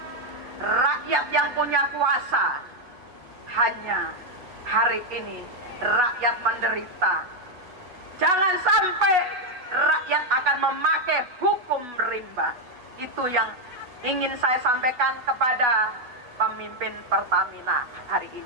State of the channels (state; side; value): late; left; 8.2 ms